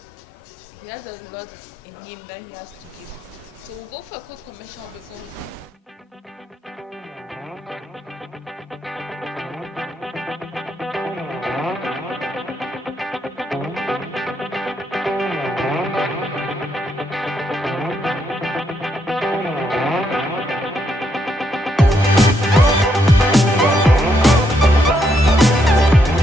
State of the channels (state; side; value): normal; both; correlation 0.77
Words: He has a lot in him that he has to give. So we'll go for a quick commercial before we